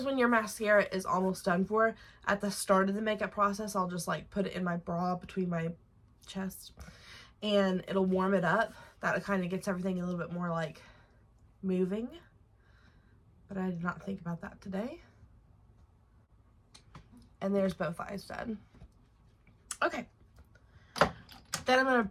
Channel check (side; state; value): both; identical; correlation 1.00